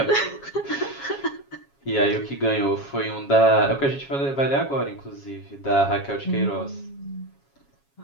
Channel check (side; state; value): right; late; 7.3 ms